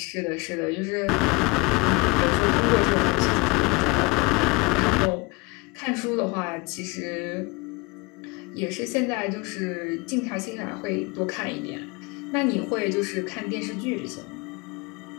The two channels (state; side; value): quieter; right; 26.9 dB